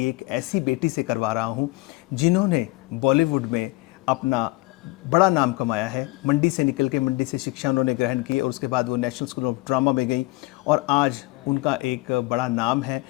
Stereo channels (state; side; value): quieter; right; 21.9 dB